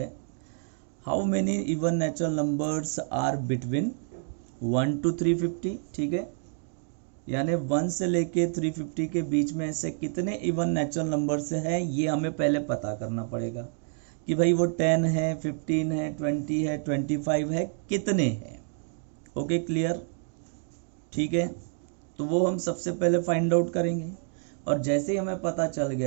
How many even natural numbers are between 1 to 350. ठीक है, यानी 1 से लेके 350 के बीच में ऐसे कितने इवन नेचुरल नंबर्स है, ये हमें पहले पता करना पड़ेगा कि भाई वो 10 है, 15 है, 20 है, 25 है, कितने हैं. Okay, clear. ठीक है, तो वो हम सबसे पहले फाइंड आउट करेंगे. और जैसे ही हमें पता चल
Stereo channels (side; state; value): left; silent; 57 dB below the other